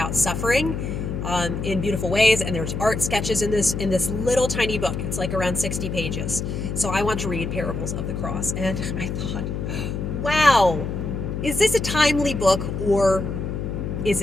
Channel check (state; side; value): noise; left; hum, 4 dB below the sound